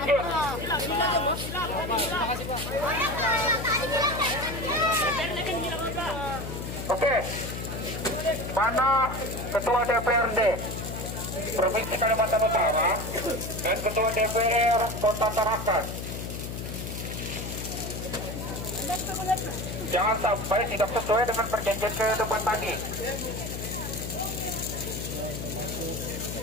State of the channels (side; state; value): left; noise; hum, 6 dB below the sound